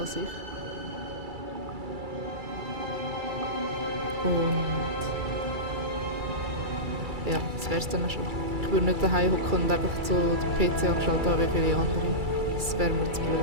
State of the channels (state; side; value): late; left; 2.3 ms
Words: sich. Und ja, das wäre es dann auch schon. Ich würde nicht daheim hocken und einfach so den PC angeschaltet haben wie viele andere. Das wäre mir zu